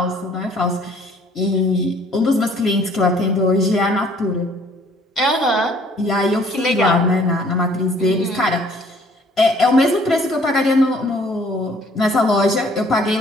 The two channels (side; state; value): both; normal; correlation 0.58